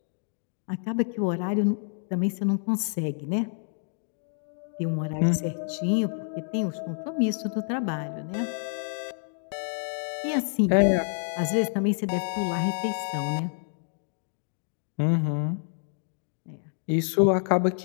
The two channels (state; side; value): silent; right; 59 dB below the other